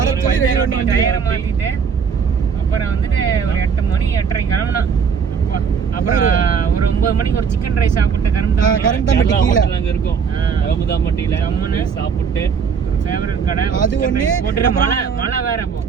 டயரை மாத்திட்டு அப்புறம் வந்துட்டு ஒரு 8 மணி 8:30 கிளம்புனோம். அப்புறம் ஒரு 9 மணிக்கு ஒரு சிக்கன் ரைஸ் சாப்பிட்டு கரந்தம்பட்டி கீழ அங்க இருக்கும். அகமதாம்பட்டியில அம்மனு சாப்பிட்டு ஒரு ஃபேவரட் கடை அது ஒண்ணு போட்டுற மழை வேற அப்போ.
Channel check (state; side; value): quieter; left; 6.4 dB